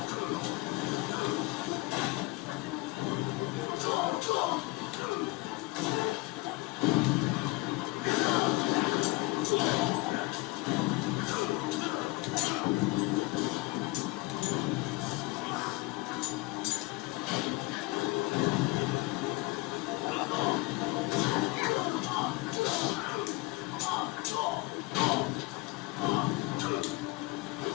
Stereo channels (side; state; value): right; quieter; 22.7 dB